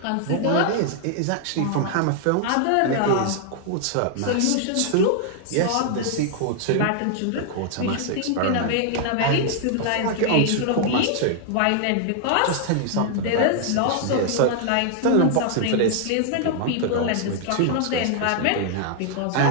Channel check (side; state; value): both; different; correlation 0.00